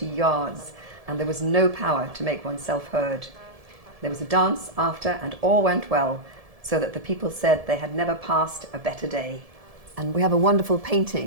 yards, and there was no power to make oneself heard. There was a dance after, and all went well, so that the people said they had never passed a better day. And we have a wonderful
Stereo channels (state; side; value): late; left; 1.7 ms